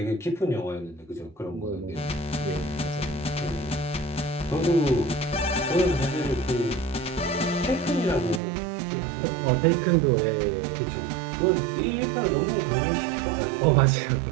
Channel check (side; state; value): left; drops out; at 8.4 s